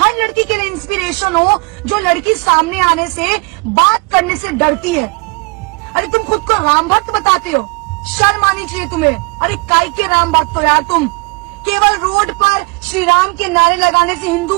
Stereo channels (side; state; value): left; quieter; 27.6 dB